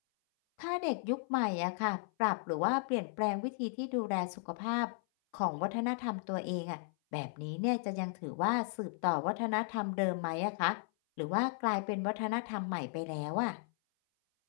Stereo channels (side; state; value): right; silent; 54 dB below the other